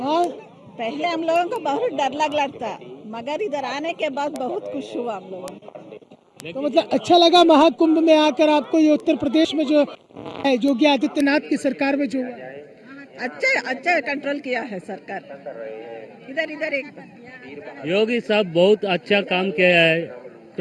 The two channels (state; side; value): identical; both; correlation 1.00